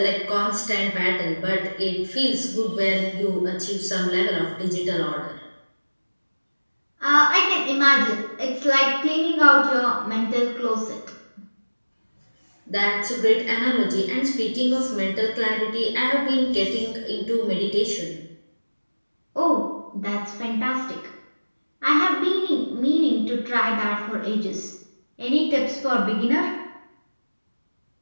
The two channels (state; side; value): inverted; both; correlation -1.00